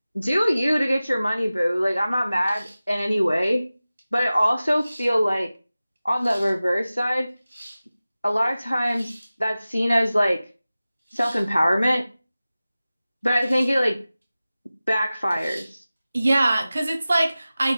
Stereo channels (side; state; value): both; inverted; correlation -0.96